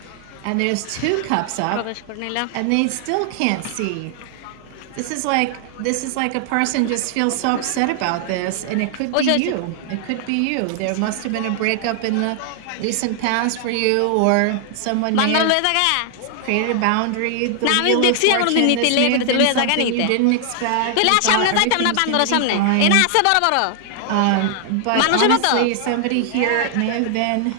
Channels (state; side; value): different; both; correlation 0.00